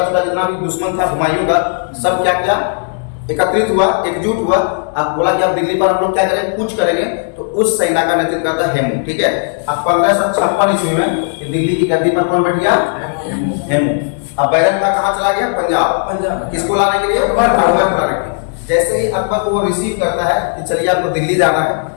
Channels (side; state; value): right; silent; digital silence